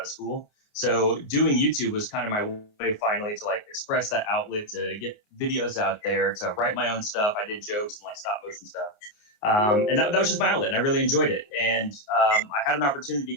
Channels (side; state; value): right; late; 28 ms